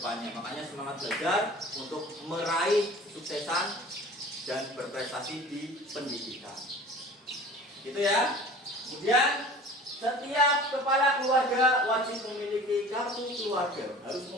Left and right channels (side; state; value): both; normal; correlation 0.42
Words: Makanya semangat belajar untuk meraih kesuksesan dan berprestasi di pendidikan. Gitu ya. Kemudian setiap kepala keluarga wajib memiliki kartu keluarga, harus